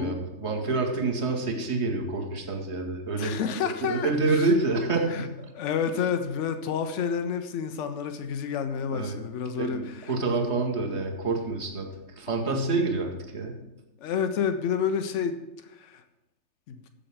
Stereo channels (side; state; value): right; late; 3.5 ms